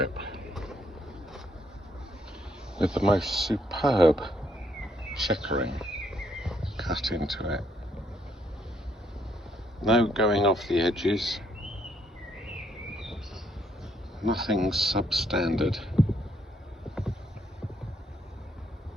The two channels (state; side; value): normal; both; correlation 0.71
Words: with the most superb checkering cut into it. No going off the edges, nothing substandard.